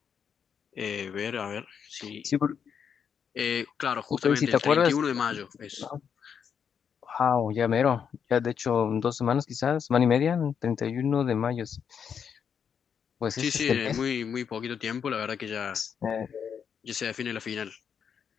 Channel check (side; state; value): right; quieter; 7.4 dB